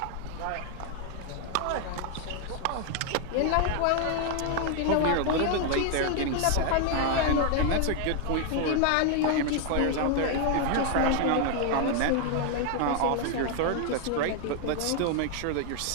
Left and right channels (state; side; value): different; both; correlation 0.00